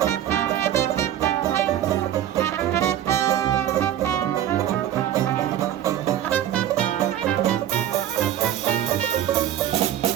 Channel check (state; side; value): quieter; left; 11.4 dB